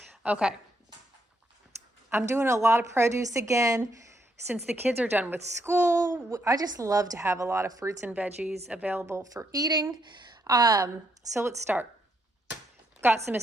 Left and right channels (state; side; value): normal; both; correlation 0.76